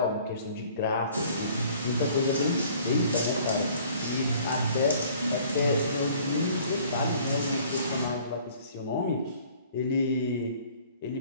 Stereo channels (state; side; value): inverted; both; correlation -0.54